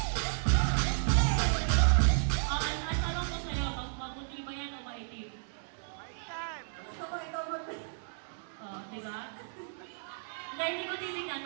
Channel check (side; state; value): left; silent; 56 dB below the other